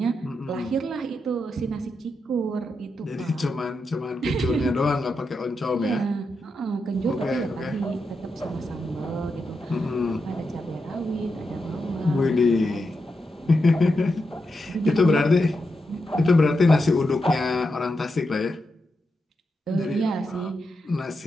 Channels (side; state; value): both; normal; correlation 0.86